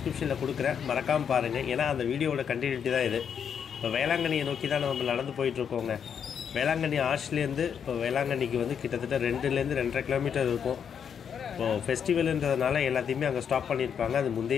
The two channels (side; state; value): right; quieter; 7.6 dB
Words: கொடுக்குறேன், மறக்காமல் பாருங்கள். ஏன்னா அந்த வீடியோவோட கண்டினியூட்டி தான் இது. இப்போ வேளாங்கண்ணியை நோக்கி தான் நம்ம நடந்து போயிட்டுருக்கோங்க. வேளாங்கண்ணி ஆர்ச்லேருந்து இப்போ வேளாங்கண்ணிக்கு வந்து கிட்டத்தட்ட 2லேருந்து 2.5 கிலோமீட்டர் இருக்கும். இப்போது ஃபெஸ்டிவலுன்றதுனால எல்லாத்தையுமே அங்கே ஸ்டாப் பண்ணியிருப்பாங்க. அது